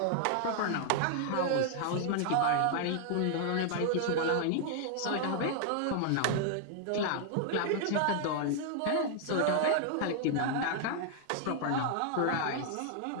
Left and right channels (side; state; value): both; different; correlation 0.00